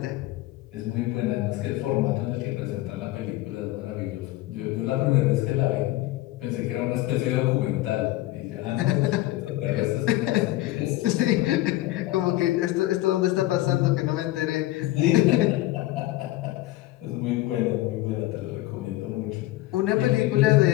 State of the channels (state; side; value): quieter; right; 16.9 dB